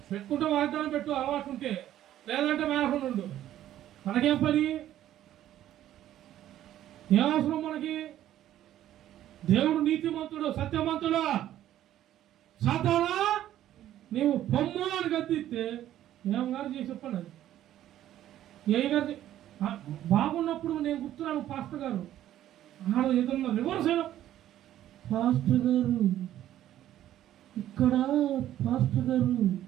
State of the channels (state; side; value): quieter; left; 12.4 dB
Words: పెట్టుకుంటే వాగ్దానం పెట్టు అలవాటు ఉంటే, లేదంటే మేనకుండా ఉండు. మనకేం పని? ఏ అవసరం మనకి? దేవుడు నీతిమంతుడు, సత్యమంతుడు. సాతానా నీవు పొమ్ము అని గద్దిస్తే ఏం గారు చేసి చెప్పండి. అది ఏ గారు బాగున్నప్పుడు నేను గుర్తున్నాను. పాస్టర్ గారు ఆడ ఏదన్నా రివర్స్ అయినా, పాస్టర్ గారు ఇక్కడ పాస్టర్ గారు